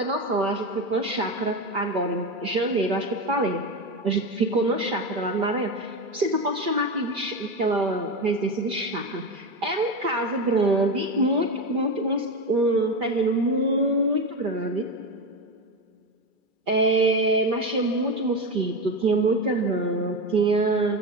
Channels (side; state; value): left; late; 2.3 ms